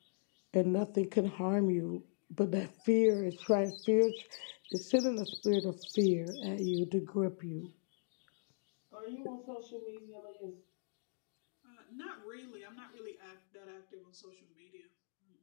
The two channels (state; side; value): silent; right; digital silence